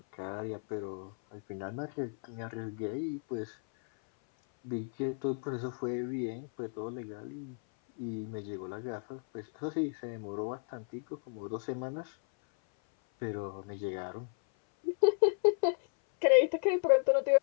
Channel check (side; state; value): right; silent; 55 dB below the other